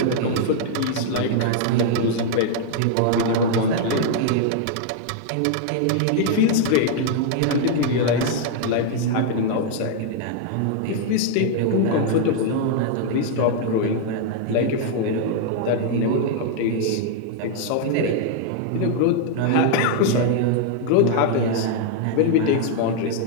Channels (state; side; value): different; both; correlation -0.01